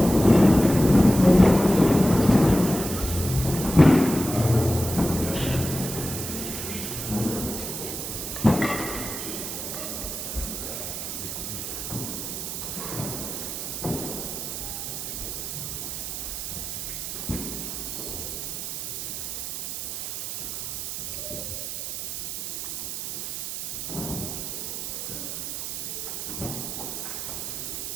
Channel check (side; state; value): right; noise; hiss, 5 dB below the sound